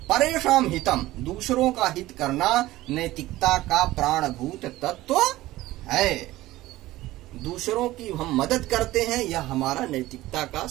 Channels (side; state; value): left; quieter; 17.0 dB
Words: परेषां हितम, दूसरों का हित करना नैतिकता का प्राणभूत तत्व है। दूसरों की हम मदद करते हैं, यह हमारा नैतिकता का